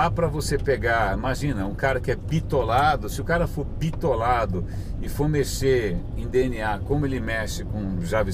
para você pegar, imagina, um cara que é bitolado, se o cara for bitolado e for mexer em DNA como ele mexe com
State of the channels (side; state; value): both; identical; correlation 1.00